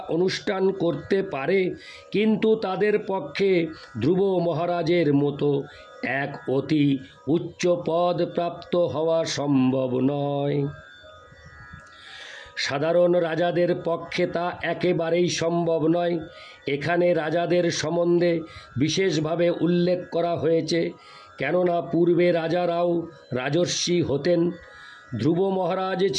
অনুষ্ঠান করতে পারে, কিন্তু তাদের পক্ষে ধ্রুব মহারাজের মতো এক অতি উচ্চ পদ প্রাপ্ত হওয়া সম্ভব নয়। সাধারণ রাজাদের পক্ষে তা একেবারেই সম্ভব নয়। এখানে রাজাদের সম্বন্ধে বিশেষভাবে উল্লেখ করা হয়েছে, কেননা পূর্বে রাজারাও রাজর্ষি হতেন। ধ্রুব মহারাজ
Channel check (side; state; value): both; identical; correlation 1.00